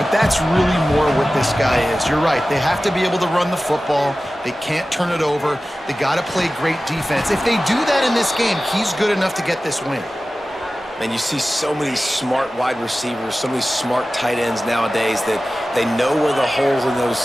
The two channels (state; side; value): normal; both; correlation 0.96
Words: that's really more what this guy is. You're right. They have to be able to run the football. They can't turn it over. They got to play great defense. If they do that in this game, he's good enough to get this win. And you see so many smart wide receivers, so many smart tight ends nowadays that they know where the holes in those